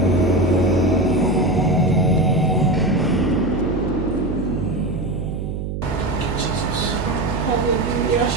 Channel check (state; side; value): noise; right; hum, 5 dB below the sound